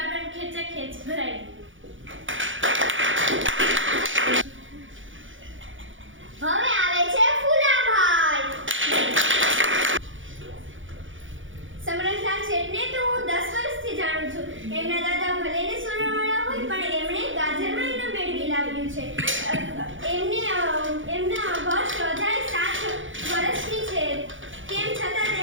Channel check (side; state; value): left; late; 0.56 ms